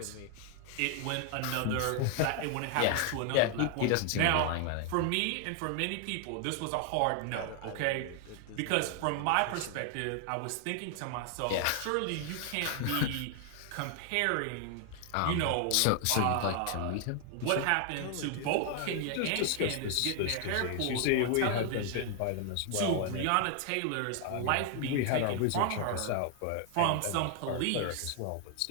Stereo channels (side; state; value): both; different; correlation 0.00